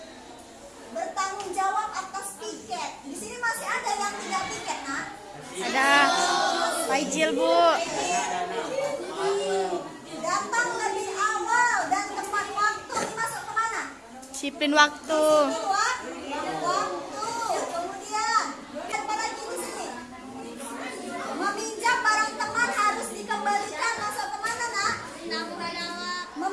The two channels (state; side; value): identical; both; correlation 1.00